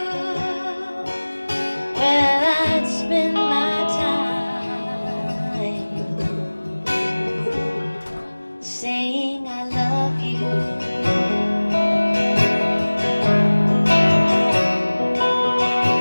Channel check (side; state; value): both; inverted; correlation -1.00